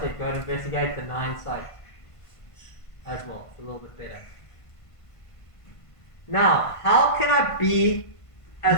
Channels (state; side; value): late; right; 1.5 ms